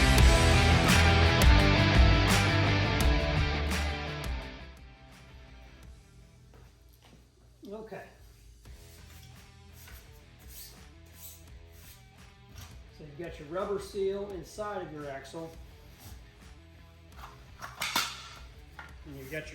Okay. So you've got your rubber seal inside of your axle. And you've got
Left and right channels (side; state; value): both; identical; correlation 1.00